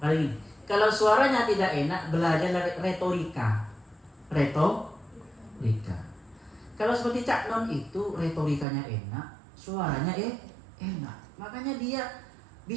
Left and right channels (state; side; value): drops out; left; at 8.7 s